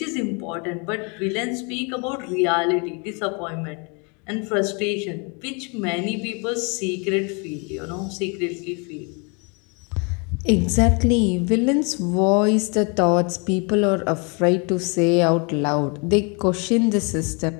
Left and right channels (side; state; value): right; quieter; 33.5 dB